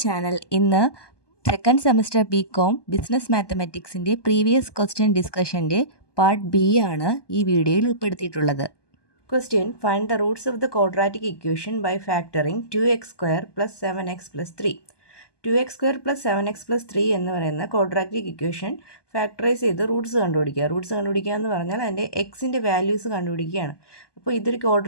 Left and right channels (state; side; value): late; right; 1.2 ms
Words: channel. ഇന്ന് second semester BCom business മാത്തമാറ്റിക്സിൻ്റെ പ്രീവിയസ് ക്വസ്റ്റ്യൻ ഡിസ്കഷൻ്റെ പാർട്ട് ബി ആണ് ഈ വീഡിയോയിൽ ഉൾപ്പെടുത്തിയിട്ടുള്ളത്. Question: find the roots of the quadratic equation by factoring 2x² + 7x + 3. 2x² + 7x + 3 എന്ന് പറയുന്ന ക്വാഡ്രാറ്റിക് ഇക്വേഷൻ ഫാക്ടറൈസ് ചെയ്ത് റൂട്ട്സ് കണ്ടുപിടിക്കുക. റൂട്ട്സ് കണ്ടുപിടിക്കുക എന്ന് പറഞ്ഞാൽ അതിൻ്റെ എക്സിൻ്റെ വാല്യൂസ് കണ്ടുപിടിക്കുകയാണ്. അപ്പോൾ ഇതൊരു